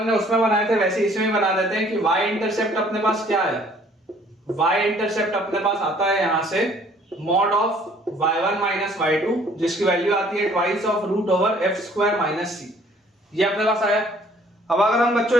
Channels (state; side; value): normal; both; correlation 0.58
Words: ने उसमें बनाए थे वैसे इसमें बना देते हैं कि y इंटरसेप्ट अपने पास क्या है, y इंटरसेप्ट अपने पास आता है यहां से mod of y1 minus y2 जिसकी वैल्यू आती है twice of root over f square minus c, ये अपने पास आया। अब अगर हम